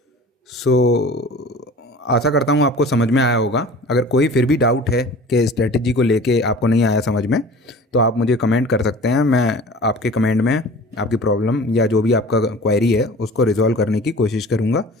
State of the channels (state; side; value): normal; both; correlation 0.42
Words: आशा करता हूँ आपको समझ में आया होगा। अगर कोई फिर भी डाउट है कि स्ट्रेटजी को लेके आपको नहीं आया समझ में, तो आप मुझे कमेंट कर सकते हैं। मैं आपके कमेंट में आपकी प्रॉब्लम या जो भी आपका क्वेरी है उसको रिजॉल्व करने की कोशिश करूँगा।